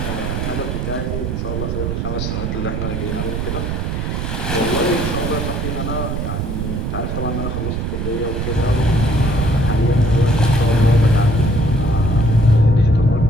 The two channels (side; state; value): right; noise; rumble, 2 dB below the sound